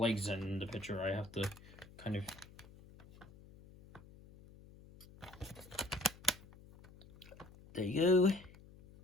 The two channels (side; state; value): left; noise; hum, 21 dB below the sound